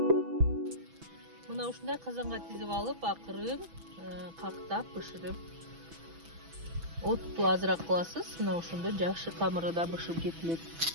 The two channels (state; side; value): late; left; 6.1 ms